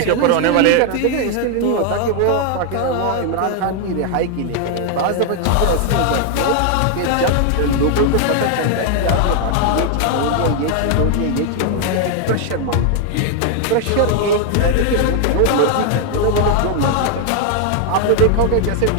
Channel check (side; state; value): both; different; correlation 0.00